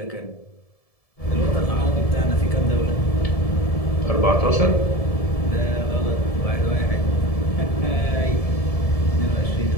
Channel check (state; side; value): late; right; 1.7 ms